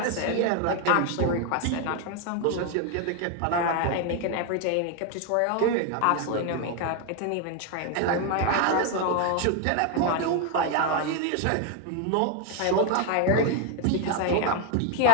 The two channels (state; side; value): different; both; correlation 0.01